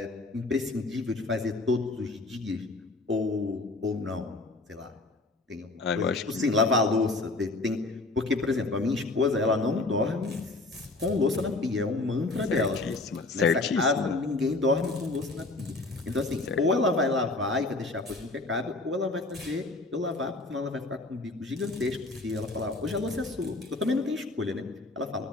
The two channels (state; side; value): quieter; right; 3.1 dB